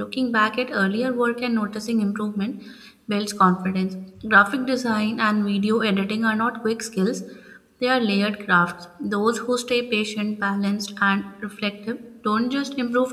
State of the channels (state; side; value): identical; both; correlation 1.00